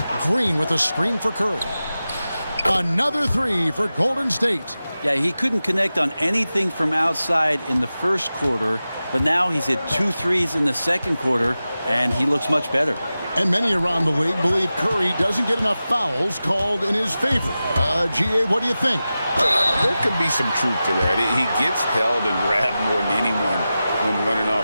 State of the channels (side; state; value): both; inverted; correlation -0.94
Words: Green with a screen for Curry. Another three for Golden State. Yeah, he couldn't connect on anything from outside in the first quarter, but now he's hit 2 threes in the second quarter, and he looks much better. And many around the league believe Curry doesn't get enough fouls called in his favor. GA, what do you think? There could be some truth to that. He gets held and grabbed more than anyone when running